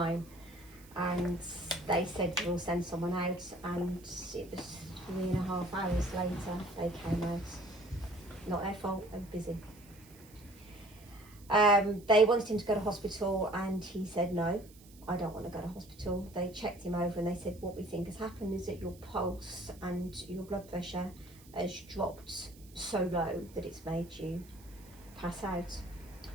and they said we'll send someone out, and it was 3.5 hours later they came out. Not their fault, they were busy. They wanted him to go to hospital, and he said no, I don't want to go to hospital. They checked him over and they said, what we think has happened is that your pulse and your blood pressure has dropped so low that it's made you pass out.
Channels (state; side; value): noise; right; hiss, 24 dB below the sound